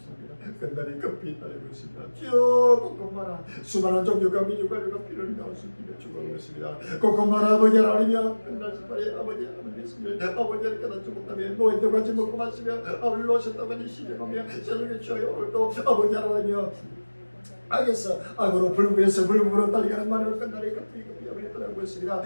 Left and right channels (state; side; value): inverted; both; correlation -1.00